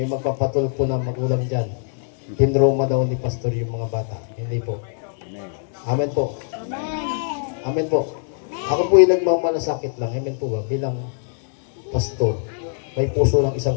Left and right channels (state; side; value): silent; right; 64 dB below the other